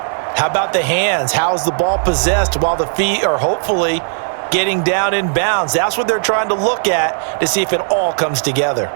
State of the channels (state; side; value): silent; left; digital silence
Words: How about the hands? How's the ball possessed while the feet are hopefully getting down in bounds? That's what they're trying to look at to see if it all comes together.